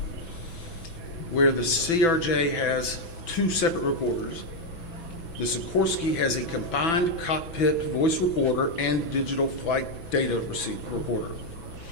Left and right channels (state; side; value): late; right; 6.0 ms